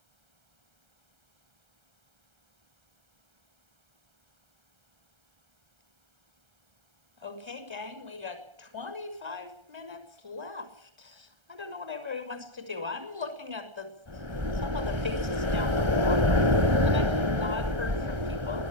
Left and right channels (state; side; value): late; left; 1.3 ms